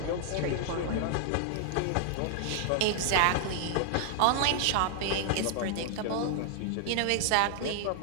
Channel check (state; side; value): different; both; correlation 0.00